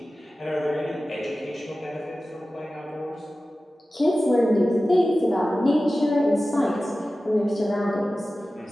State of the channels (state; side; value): normal; both; correlation 0.95